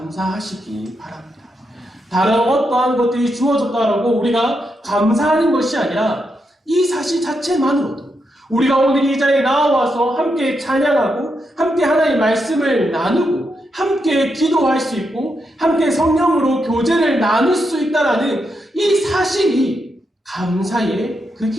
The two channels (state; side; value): normal; both; correlation 0.83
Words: 바랍니다. 다른 어떠한 것들이 주어졌다라고 우리가 감사하는 것이 아니라 이 사실 자체만으로도 우리가 오늘 이 자리에 나와서 함께 찬양하고 함께 하나님의 말씀을 나누고 함께 기도할 수 있고 함께 성령으로 교제를 나눌 수 있다라는 이 사실이 감사의 그